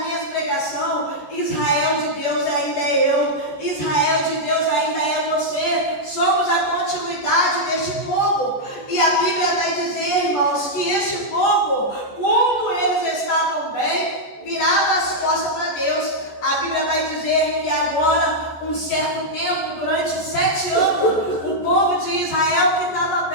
minha pregação: Israel de Deus ainda é eu, Israel de Deus ainda é você. Somos a continuidade deste povo. E a Bíblia vai dizer, irmãos, que este povo, quando eles estavam bem, virava as costas para Deus. A Bíblia vai dizer que agora, um certo tempo, durante 7 anos, o povo de Israel que estava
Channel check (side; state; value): right; late; 14 ms